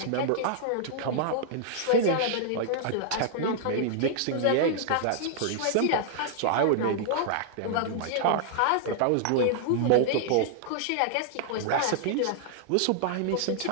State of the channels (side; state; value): both; different; correlation -0.01